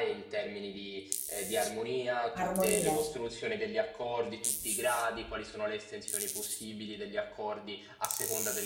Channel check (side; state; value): both; identical; correlation 1.00